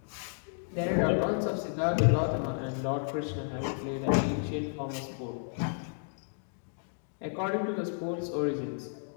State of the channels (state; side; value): silent; right; digital silence